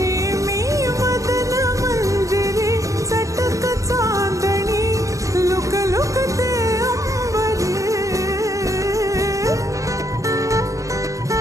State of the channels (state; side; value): late; left; 0.16 ms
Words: मी मदन मंजिरी चटक चांदणी लुक लुक ते अंबरी